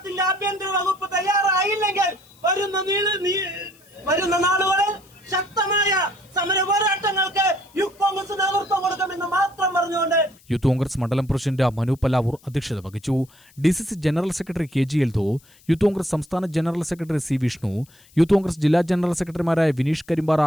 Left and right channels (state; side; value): noise; left; hiss, 28 dB below the sound